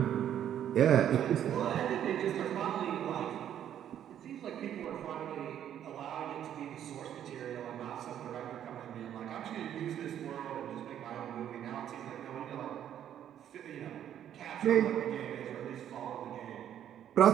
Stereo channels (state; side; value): quieter; left; 10.3 dB